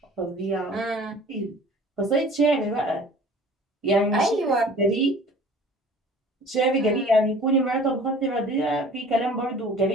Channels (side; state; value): both; normal; correlation 0.46